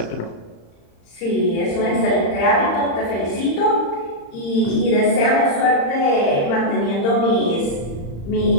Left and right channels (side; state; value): right; late; 35 ms